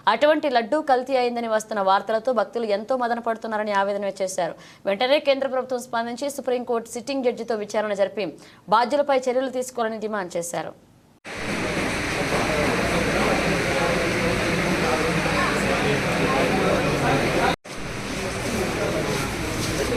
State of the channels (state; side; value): identical; both; correlation 1.00